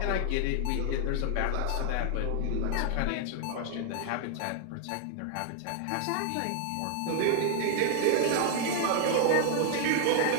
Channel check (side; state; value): both; different; correlation 0.00